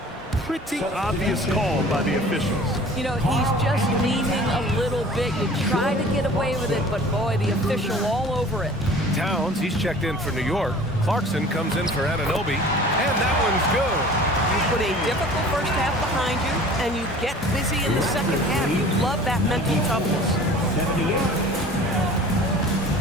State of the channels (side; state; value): both; normal; correlation 0.45